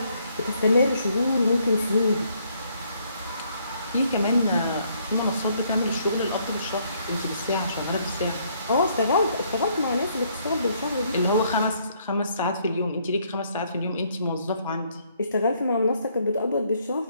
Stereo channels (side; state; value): both; inverted; correlation -0.69